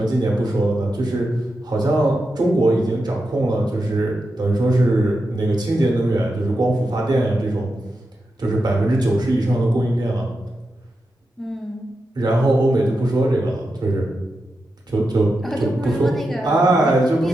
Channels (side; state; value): both; normal; correlation 0.88